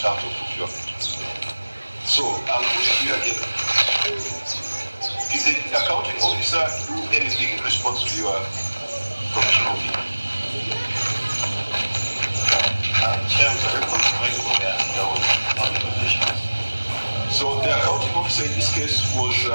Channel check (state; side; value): inverted; both; correlation -1.00